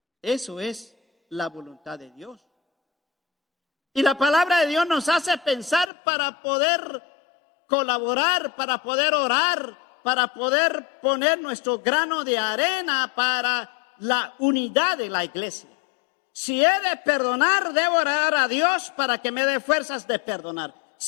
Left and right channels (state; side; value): drops out; right; at 5.9 s